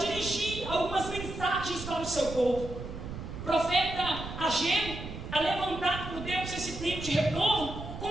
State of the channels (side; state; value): right; noise; rumble, 9 dB below the sound